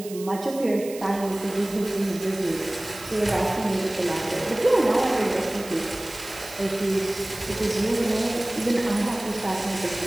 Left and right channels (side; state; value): right; noise; hiss, 15 dB below the sound